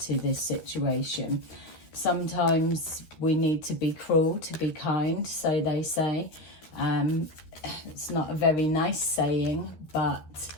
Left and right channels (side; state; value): right; late; 13 ms